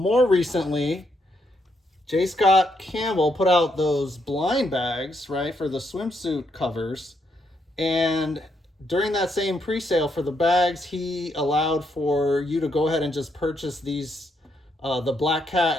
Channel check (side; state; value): both; normal; correlation 0.77